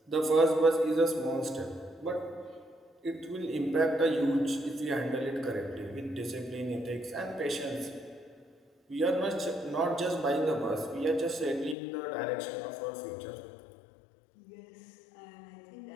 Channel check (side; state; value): right; drops out; at 11.8 s